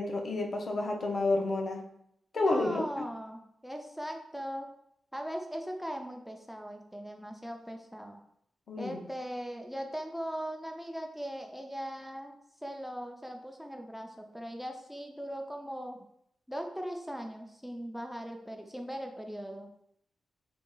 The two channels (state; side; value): normal; both; correlation 0.91